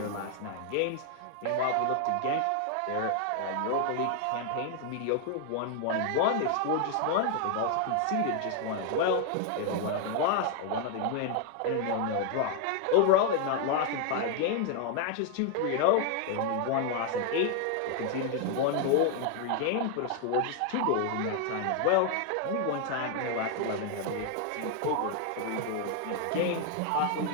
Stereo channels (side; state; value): both; different; correlation 0.00